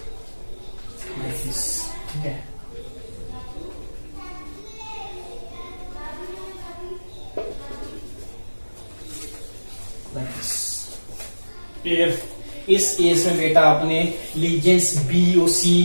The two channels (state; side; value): inverted; both; correlation -1.00